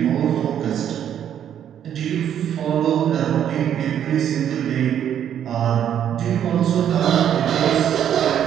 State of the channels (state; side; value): quieter; left; 9.7 dB